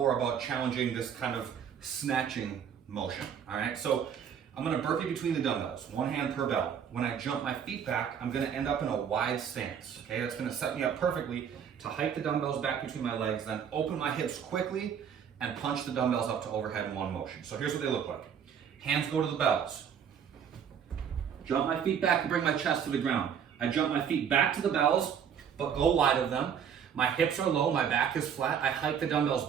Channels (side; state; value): left; quieter; 7.9 dB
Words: about challenging this kind of snatching motion, all right? So I'm gonna burpee between the dumbbells, 1 hand per bell. When I jump my feet back, I'm gonna end up in a wide stance, okay? That's gonna set me up perfectly to hike the dumbbells back between my legs, then open my hips quickly and punch the dumbbells up to overhead in one motion. So here's what they look like. Hands go to the bells. Jump my feet back and bring my chest to the ground. I jump my feet back to the bells, but go wide of them. My hips are low, my back is flat. I hike the dumbbells